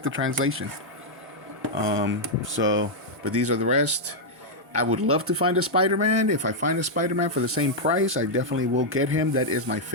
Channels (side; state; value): both; normal; correlation -0.03